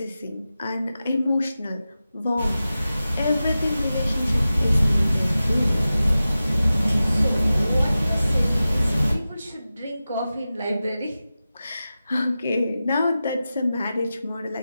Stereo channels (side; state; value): both; inverted; correlation -0.94